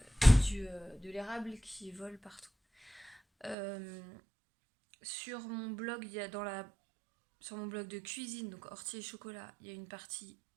l'érable qui volent partout. Sur mon blog, il y a sur mon blog de cuisine, donc ortie et chocolat, il y a une partie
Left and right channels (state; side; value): drops out; left; at 3.6 s